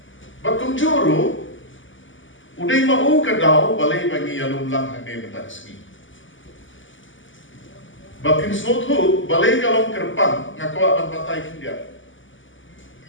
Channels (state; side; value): late; right; 0.56 ms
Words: batung juru udai mau ke dau balai bagi alum lang hane mentaski. Bakin snothu balai kalong kerpang ngakwa ban patai kindia.